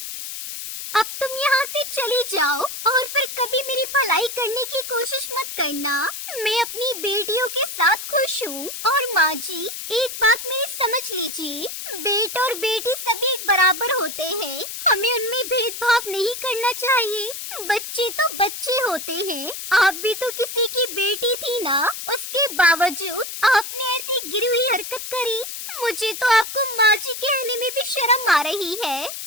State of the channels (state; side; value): noise; left; hiss, 8 dB below the sound